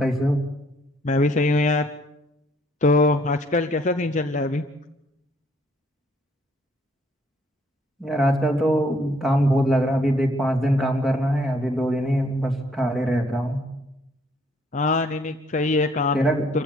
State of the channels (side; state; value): both; normal; correlation 0.65